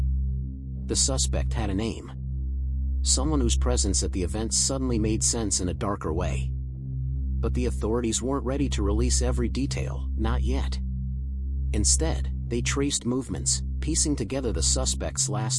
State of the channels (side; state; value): both; identical; correlation 1.00